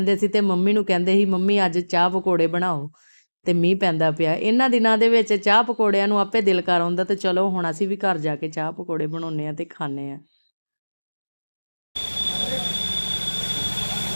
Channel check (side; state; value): both; inverted; correlation -1.00